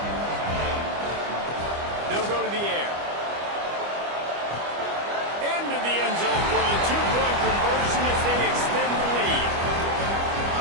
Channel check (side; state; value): left; late; 25 ms